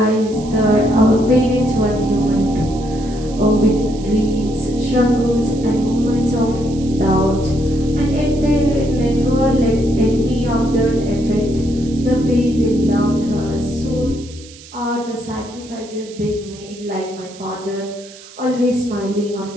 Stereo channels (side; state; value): right; noise; hiss, 20 dB below the sound